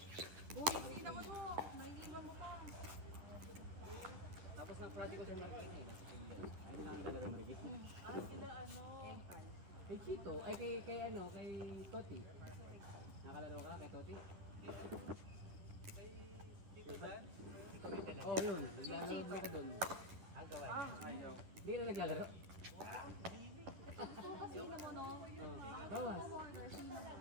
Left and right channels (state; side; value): late; left; 11 ms